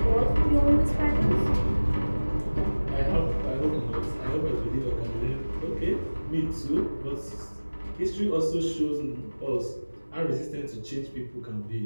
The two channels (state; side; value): inverted; both; correlation -1.00